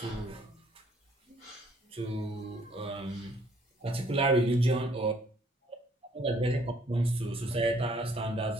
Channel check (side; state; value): both; normal; correlation 0.63